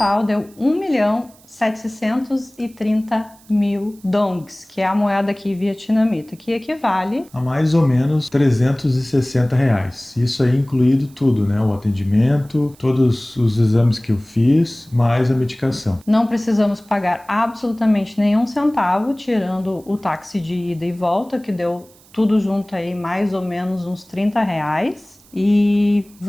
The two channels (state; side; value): noise; right; hiss, 27 dB below the sound